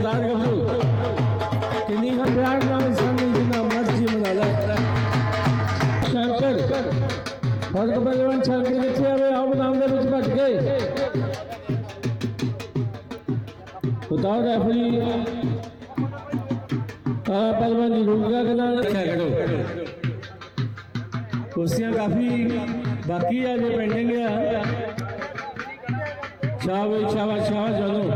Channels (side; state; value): both; identical; correlation 1.00